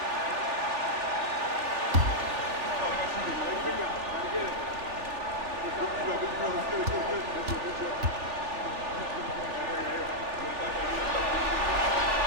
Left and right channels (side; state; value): left; late; 3.4 ms